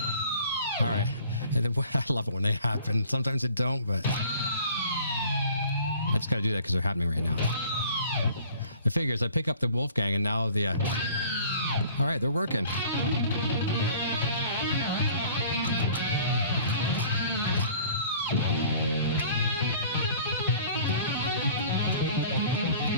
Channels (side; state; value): both; inverted; correlation -0.50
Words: All right. And then, I love it when they happen. Sometimes it don't, but I just got to do that because they're happening right now. The figures, I pick up the Wolfgang and now the... all right, they're working.